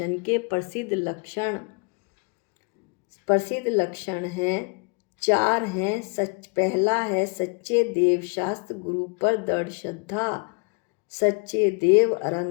के प्रसिद्ध लक्षण। प्रसिद्ध लक्षण हैं 4 हैं। पहला है सच्चे देव शास्त्र गुरु पर दृढ़ श्रद्धा। सच्चे देव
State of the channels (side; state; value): right; quieter; 35.0 dB